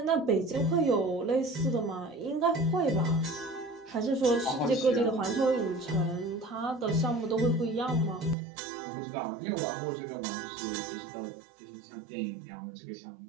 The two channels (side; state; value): left; drops out; at 8.3 s